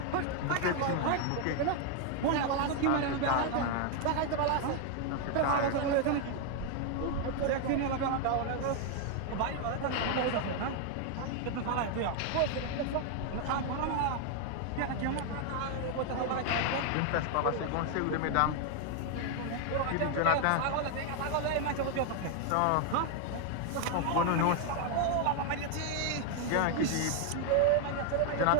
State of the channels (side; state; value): both; different; correlation 0.00